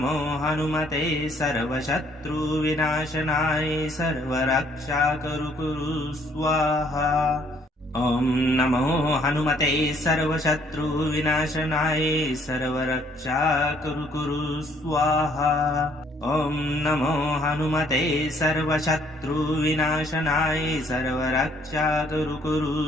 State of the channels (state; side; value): normal; both; correlation 0.64